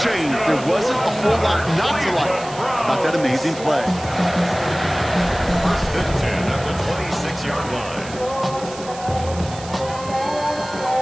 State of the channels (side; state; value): right; noise; hiss, 16 dB below the sound